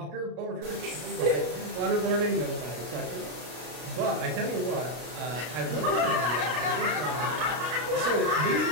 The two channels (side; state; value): left; late; 33 ms